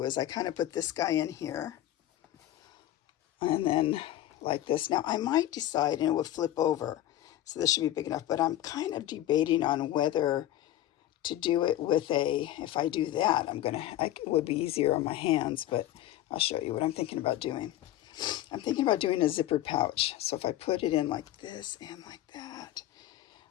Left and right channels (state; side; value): quieter; right; 13.7 dB